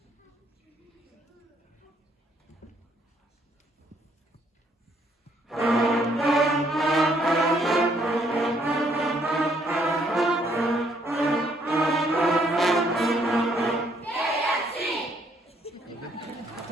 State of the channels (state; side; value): normal; both; correlation 0.68